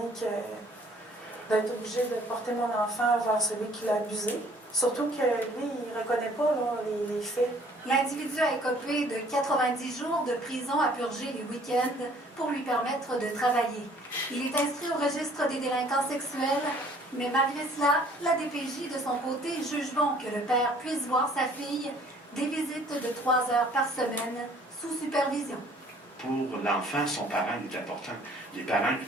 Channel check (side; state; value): both; normal; correlation 0.56